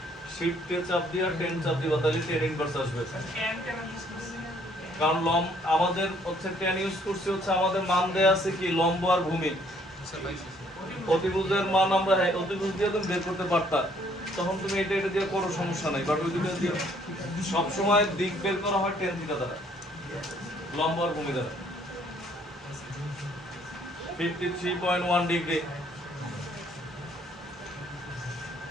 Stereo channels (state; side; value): normal; both; correlation 0.64